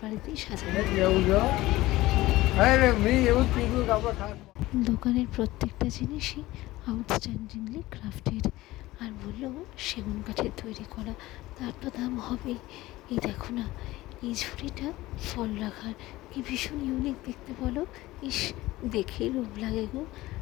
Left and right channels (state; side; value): quieter; right; 17.9 dB